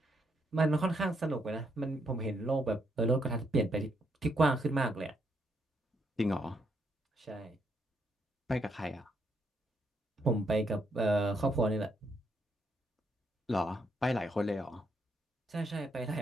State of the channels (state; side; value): normal; both; correlation 0.76